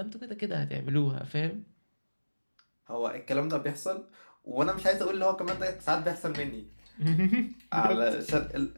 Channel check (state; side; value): inverted; both; correlation -1.00